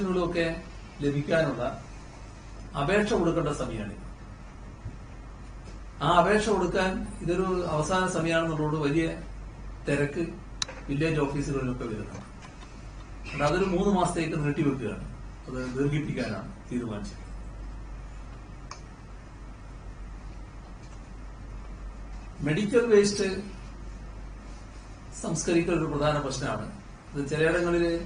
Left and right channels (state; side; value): identical; both; correlation 1.00